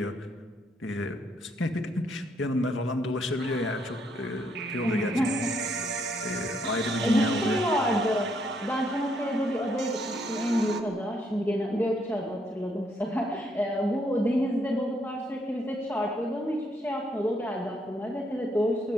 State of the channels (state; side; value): normal; both; correlation 0.73